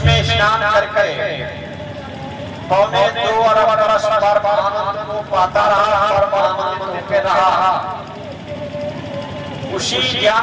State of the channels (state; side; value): identical; both; correlation 1.00